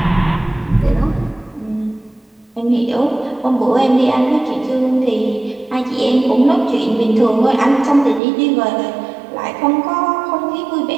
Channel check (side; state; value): left; drops out; at 8.2 s